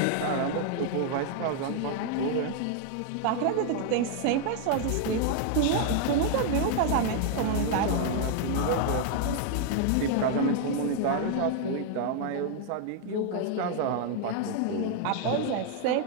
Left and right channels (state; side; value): different; both; correlation 0.00